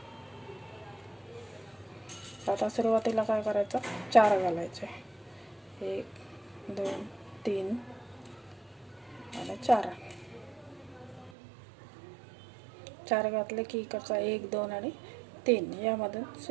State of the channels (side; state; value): left; drops out; at 11.3 s